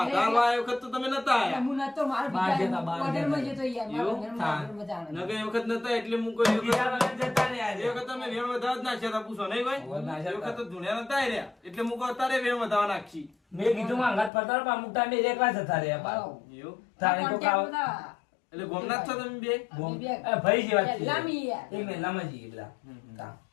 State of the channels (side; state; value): right; drops out; at 14.3 s